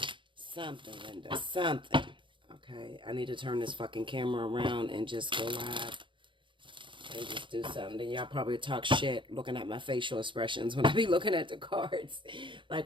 Something, Linda, something. Okay, I need to turn this fucking camera around and just go live and just do something. Then y'all probably talk shit looking at my facial expressions when I be looking at the cards.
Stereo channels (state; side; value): late; left; 0.24 ms